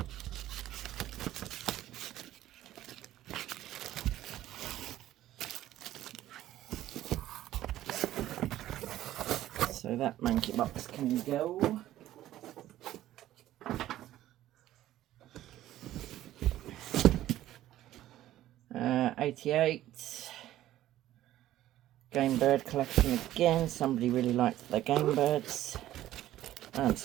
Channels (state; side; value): quieter; left; 13.8 dB